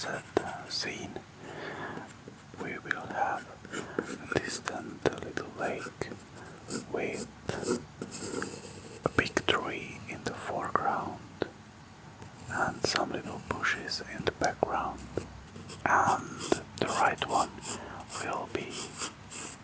scene. We will have a distant little lake with a big tree in the foreground and some little bushes in the background. And the right one will be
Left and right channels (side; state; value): both; identical; correlation 1.00